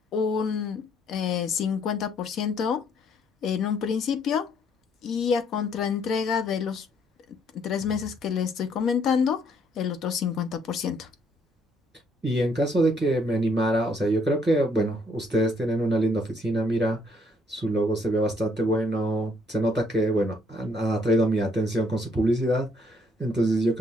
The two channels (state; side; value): normal; both; correlation 0.67